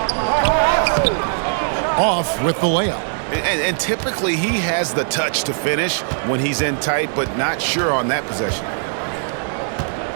Off with the layup. And typically he has the touch to finish when he's in tight, but not sure on that possession.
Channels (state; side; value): silent; left; digital silence